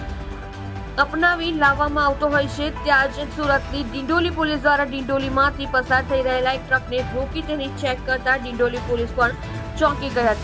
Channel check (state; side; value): identical; both; correlation 1.00